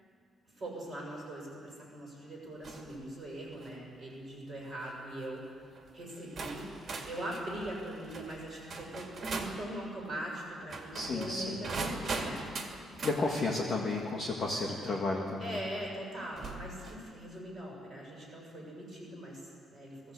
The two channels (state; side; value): normal; both; correlation 0.72